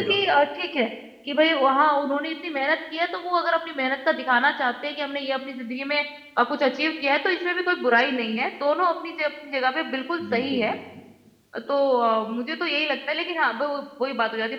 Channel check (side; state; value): both; identical; correlation 1.00